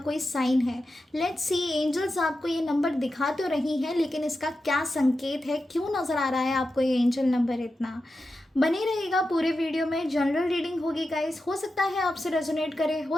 साइन है। लेट्स सी, एंजल्स आपको ये नंबर दिखा तो रही हैं, लेकिन इसका क्या संकेत है, क्यों नज़र आ रहा है आपको ये एंजल नंबर इतना। बने रहेगा पूरे वीडियो में। जनरल रीडिंग होगी गाइस, हो सकता है आपसे रेजोनेट करे,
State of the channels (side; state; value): both; normal; correlation 0.90